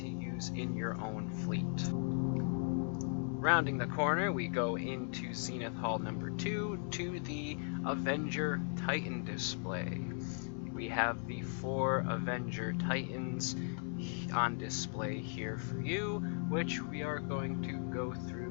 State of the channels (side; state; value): right; silent; 53 dB below the other